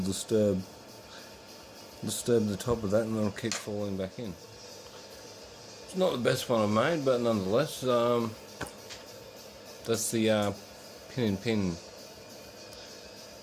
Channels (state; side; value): identical; both; correlation 1.00